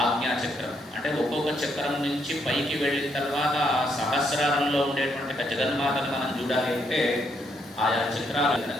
ఆజ్ఞాచక్రం. అంటే ఒక్కొక్క చక్రం నుంచి పైకి వెళ్ళిన తర్వాత సహస్రారంలో ఉండేటువంటి ఒక జగన్మాతను మనం చూడాలి అంటే ఆయా చక్రాలు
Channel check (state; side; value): normal; both; correlation 0.74